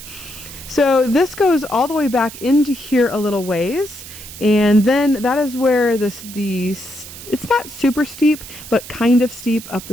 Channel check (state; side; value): noise; right; hiss, 14 dB below the sound